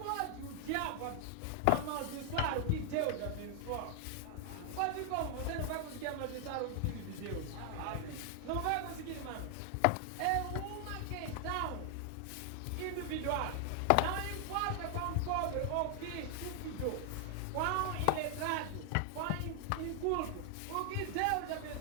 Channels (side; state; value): both; different; correlation 0.00